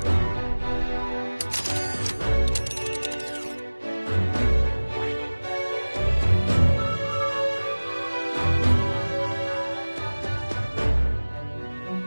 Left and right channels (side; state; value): both; inverted; correlation -1.00